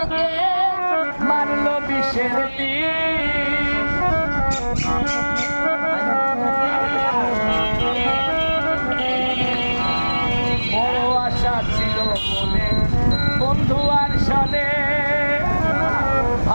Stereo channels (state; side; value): inverted; both; correlation -1.00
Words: মারলো বিষের তীর। বড় আশা ছিল মনে বন্ধু আর সাথে,